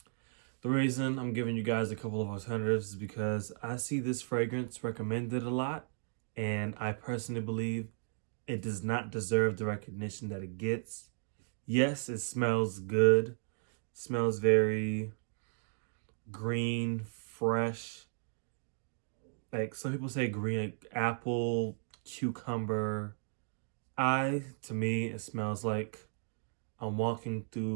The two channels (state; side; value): silent; left; digital silence